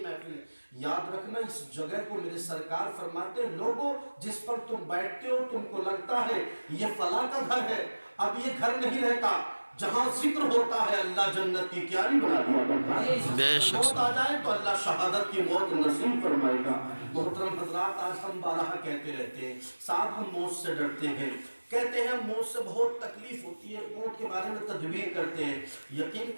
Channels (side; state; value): both; inverted; correlation -1.00